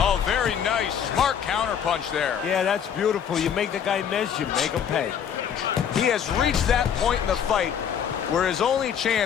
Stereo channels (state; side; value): quieter; right; 8.2 dB